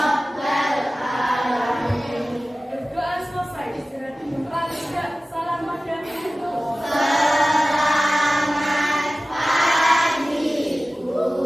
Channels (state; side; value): normal; both; correlation 0.96